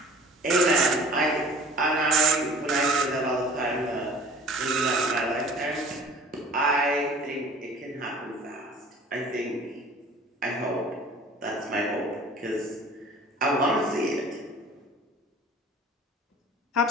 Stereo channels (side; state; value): both; normal; correlation 0.47